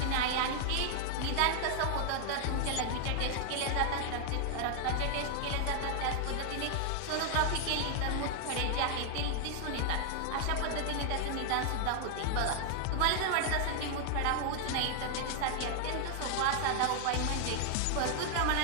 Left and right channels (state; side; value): different; both; correlation 0.00